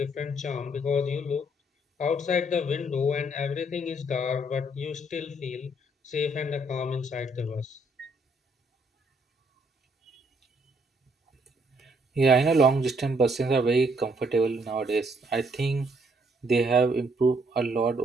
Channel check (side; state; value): both; normal; correlation 0.69